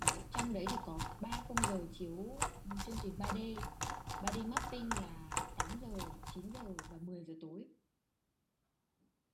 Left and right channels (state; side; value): identical; both; correlation 1.00